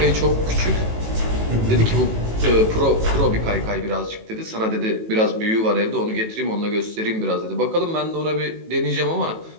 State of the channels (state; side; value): late; left; 18 ms